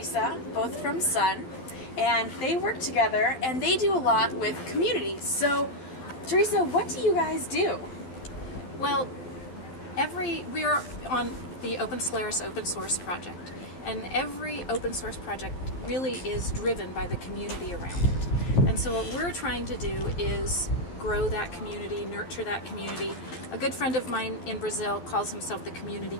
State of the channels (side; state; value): right; late; 12 ms